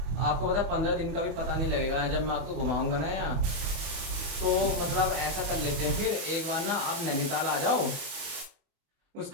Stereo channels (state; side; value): late; left; 28 ms